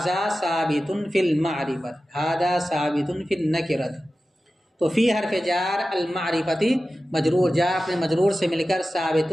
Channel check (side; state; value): both; normal; correlation 0.94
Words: ثابت فی المعرفت، ھذا ثابت فی النکرت، تو فی حرف جار المعرفتی مجرور، جار اپنے مجرور سے مل کر